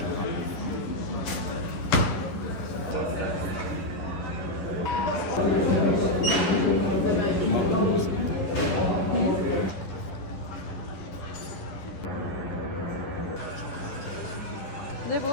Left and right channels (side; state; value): right; late; 11 ms